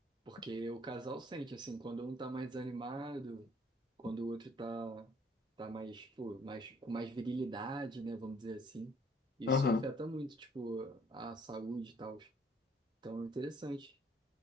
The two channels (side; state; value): both; normal; correlation 0.61